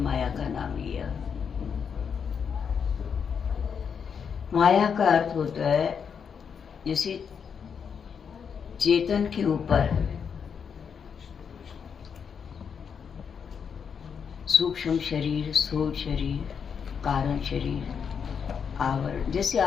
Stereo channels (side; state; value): right; quieter; 6.8 dB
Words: का नाम लिया। माया का अर्थ होता है जैसे चेतन के ऊपर सूक्ष्म शरीर, स्थूल शरीर, कारण शरीर, आवरण। जैसे